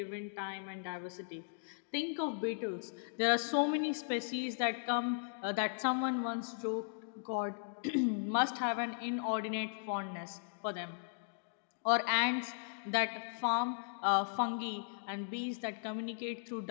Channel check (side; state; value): right; silent; digital silence